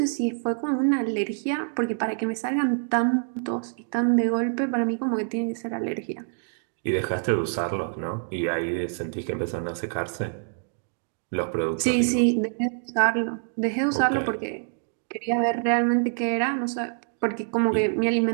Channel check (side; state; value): left; silent; 60 dB below the other